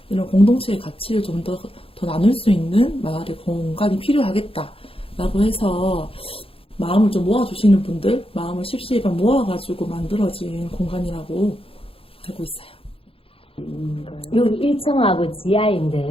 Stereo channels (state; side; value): late; right; 0.27 ms